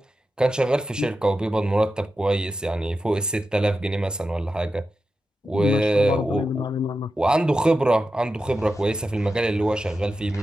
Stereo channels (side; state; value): both; normal; correlation 0.91